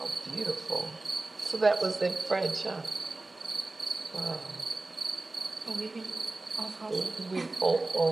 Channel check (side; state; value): left; quieter; 3.1 dB